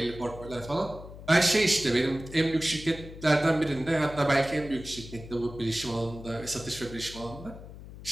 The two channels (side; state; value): left; noise; hum, 14 dB below the sound